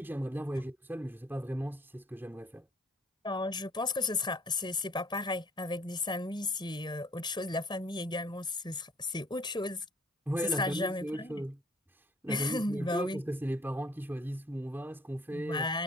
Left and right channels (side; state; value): both; normal; correlation 0.58